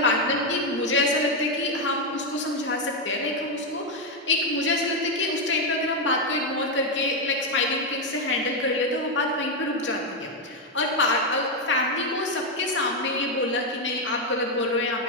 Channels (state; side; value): normal; both; correlation 0.04